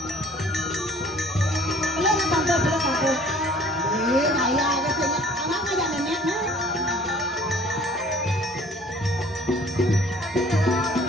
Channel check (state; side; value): normal; both; correlation 0.53